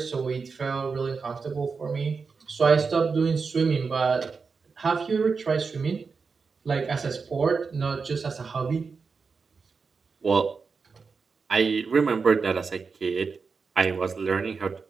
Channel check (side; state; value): left; quieter; 5.0 dB